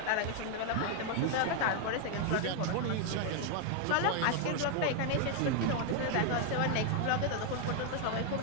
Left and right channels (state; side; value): different; both; correlation 0.00